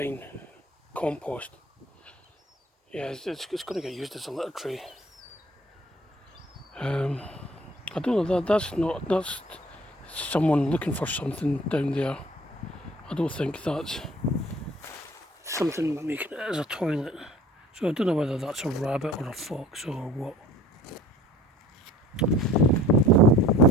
compost, yeah, it's going to get used as a litter tray. I don't know, that's someone looking for something down there. I don't think that's something making it as a toilet. So I don't know whether that's a rabbit or a fox or what.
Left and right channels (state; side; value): normal; both; correlation 0.49